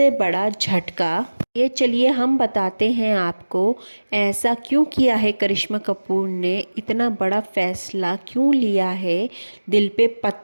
बड़ा झटका। ये चलिए हम बताते हैं आपको ऐसा क्यों किया है करिश्मा कपूर ने, इतना बड़ा फैसला क्यों लिया है, दिल पे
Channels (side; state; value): both; inverted; correlation -1.00